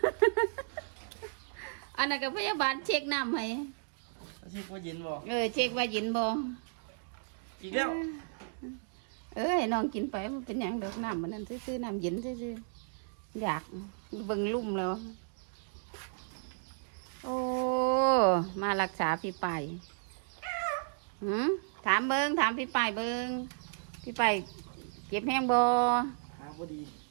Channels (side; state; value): left; silent; digital silence